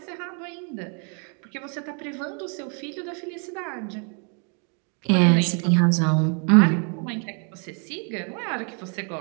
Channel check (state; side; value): quieter; left; 38.7 dB